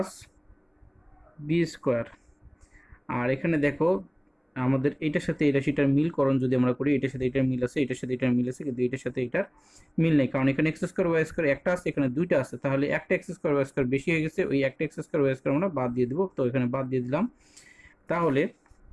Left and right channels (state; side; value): identical; both; correlation 1.00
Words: B square. আর এখানে দেখো, আমাদের এটার সাথে এই রাশিটার মিলকরণ যদি আমরা করি, এটার সাথে এটার মিল আছে, এটার সাথে এটার মিল আছে, কিন্তু এটার সাথে এটার মিল নেই, কারণ এখানে এক্স স্কোয়ার ওয়াই স্কোয়ার একটা আছে, এখানে দুইটা আছে। তাহলে একটা এক্স স্কোয়ার ওয়াই স্কোয়ার বেশি হয়ে গেছে, ওই একটা এক্স স্কোয়ার ওয়াই স্কোয়ার আমরা বাদ দিয়ে দেবো। তো এখানে বাদ দিয়ে দিলাম, তাহলে